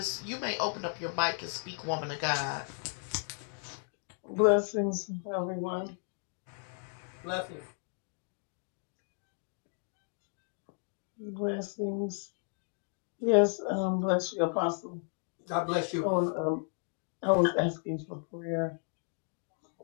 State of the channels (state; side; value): silent; right; 55 dB below the other